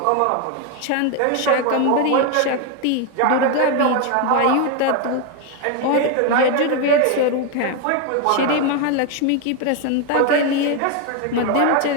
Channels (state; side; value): different; both; correlation 0.02